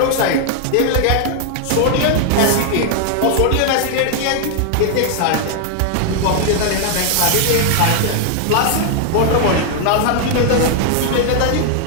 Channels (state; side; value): different; both; correlation 0.00